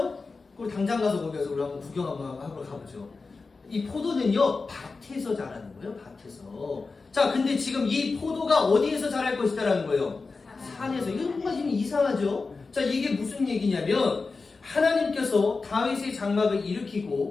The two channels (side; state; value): right; quieter; 4.1 dB